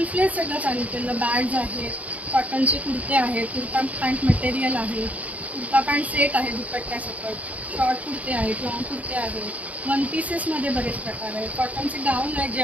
फ्लेज सगळं चालू केलं. बॅग्स आहेत, कॉटनचे कुर्ते आहेत, कुर्ता पॅन्ट मटेरियल आहे, कुर्ता पॅन्ट सेट आहे दुपट्ट्यासकट, शॉर्ट कुर्ते आहेत, लॉंग कुर्ते आहेत, 1 पीसेसमध्ये बरेच प्रकार आहेत, कॉटनचे गाऊन आहेत जे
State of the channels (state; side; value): late; left; 0.070 ms